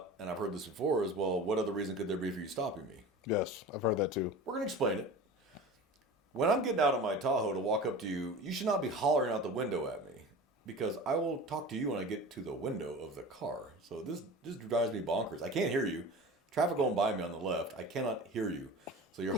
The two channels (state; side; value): normal; both; correlation 0.35